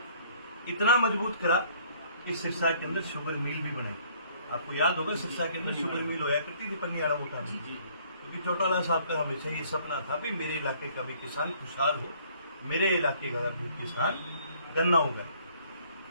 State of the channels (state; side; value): inverted; both; correlation -0.60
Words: इतना मजबूत करा कि सिरसा के अंदर शुगर मिल भी बनाई। आपको याद होगा सिरसा के अंदर शुगर मिल होया करती थी पनियाड़ा मोटा में, क्योंकि चौटाला साहब का हमेशा ये सपना था भी मेरे इलाके का भी किसान खुशहाल हो, मेरे इलाके का भी किसान गन्ना होगा।